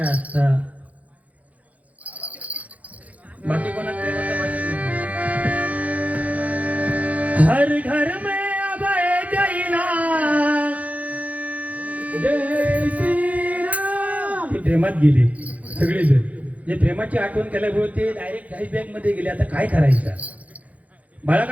असता. बाकी कोणाच प्रेमाचं माहिती नाही. हर घर में अब एक ही नाम, जय श्रीराम. ते प्रेमात गेले सगळेजण. जे प्रेमाची आठवण केल्यामुळे ते डायरेक्ट फ्लॅशबॅक मध्ये गेले. आता काय करायचं. बाळा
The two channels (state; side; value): late; left; 0.070 ms